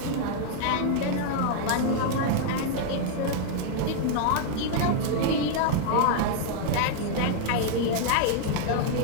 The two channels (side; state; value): both; different; correlation 0.00